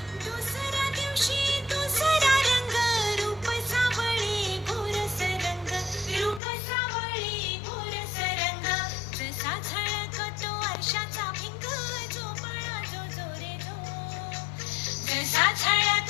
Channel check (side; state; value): right; drops out; at 6.4 s